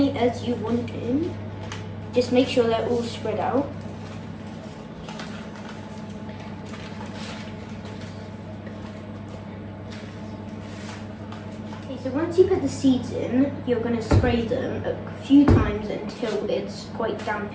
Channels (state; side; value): identical; both; correlation 1.00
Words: as you want in. Just make sure they're all spread out. Okay, so once you put the seeds in, you're going to spray them a few times until it's quite damp